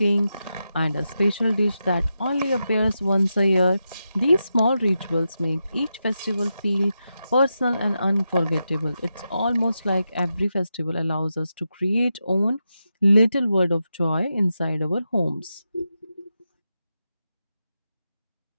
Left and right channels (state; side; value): inverted; both; correlation -0.88